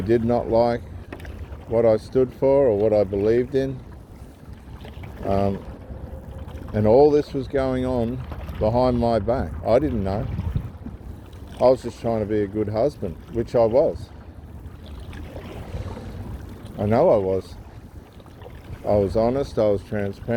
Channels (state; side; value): identical; both; correlation 1.00